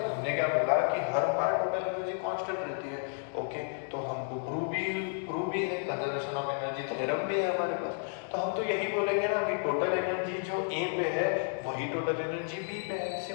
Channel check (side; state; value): right; silent; 57 dB below the other